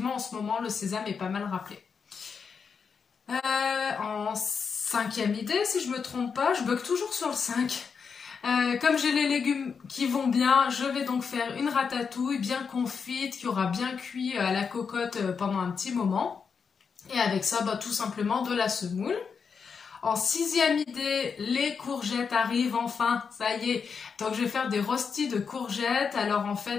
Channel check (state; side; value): quieter; right; 5.9 dB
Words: en ce moment, le sésame est pas mal rappelé. En cinquième idée, si je me trompe pas, je bug toujours sur le 5. Comme j'ai les légumes qui vont bien, je vais donc faire une ratatouille bien confite, qui aura bien cuit à la cocotte pendant un petit moment. Et avec ça, tout simplement de la semoule. En sixième idée, les courgettes arrivent enfin, ça y est. Donc je vais faire des rostis de courgettes. Alors en